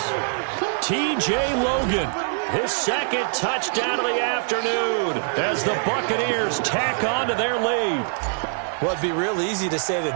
T.J. Logan, his second touchdown of the afternoon as the Buccaneers tack on to their lead. Well, it'd be real easy to say that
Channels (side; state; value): left; silent; digital silence